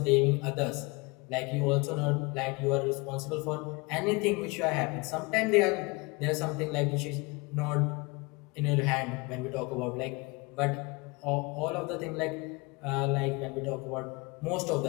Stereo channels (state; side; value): quieter; right; 26.8 dB